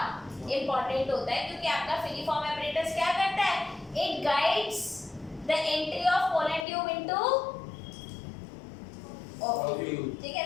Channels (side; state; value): right; drops out; at 6.7 s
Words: इंपॉर्टेंट होता है क्योंकि आपका फिलीफॉर्म apparatus क्या करता है? It guides the entry of pollen tube into ovule। ठीक है?